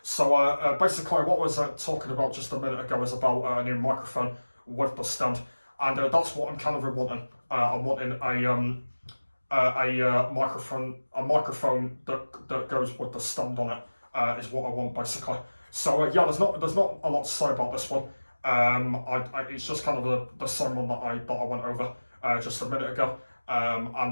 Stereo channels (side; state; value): both; inverted; correlation -1.00